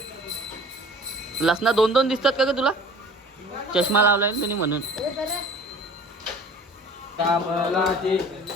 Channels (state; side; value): normal; both; correlation 0.44